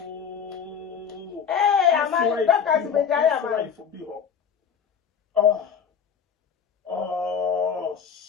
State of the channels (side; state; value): right; quieter; 7.1 dB